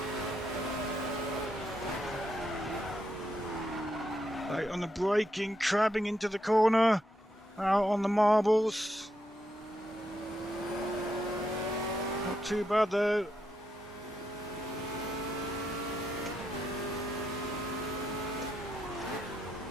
Right on the braking, crabbing into the corner. Out on the marbles. Not too bad though.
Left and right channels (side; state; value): both; normal; correlation 0.81